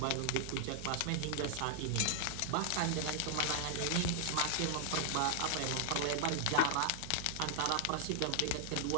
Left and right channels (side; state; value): both; different; correlation 0.00